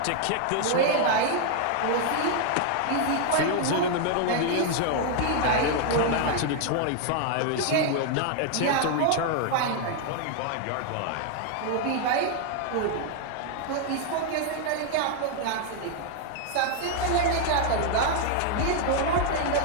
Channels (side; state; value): both; different; correlation 0.00